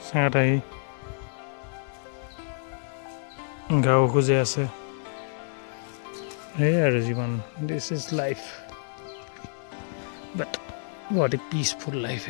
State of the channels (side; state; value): right; silent; digital silence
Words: চেঙাত আহি গাঁও খুজে আছে। এই আৰু জীৱন, this is life, but what A peaceful life